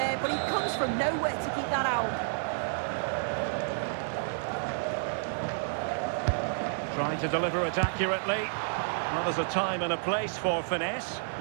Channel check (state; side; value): silent; left; 58 dB below the other